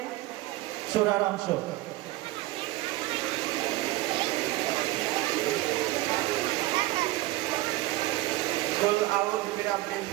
সূরার অংশ। কুল আউযু বিরাব্বিল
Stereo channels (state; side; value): quieter; left; 18.2 dB